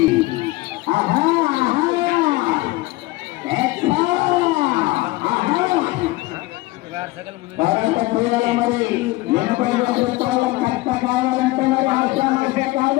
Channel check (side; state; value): right; quieter; 20.1 dB